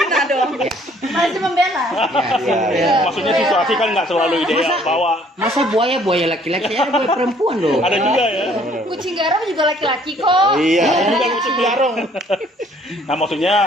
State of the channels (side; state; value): both; normal; correlation 0.60